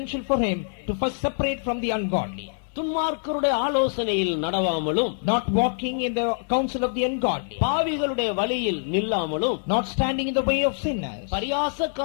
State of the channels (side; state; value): right; silent; 62 dB below the other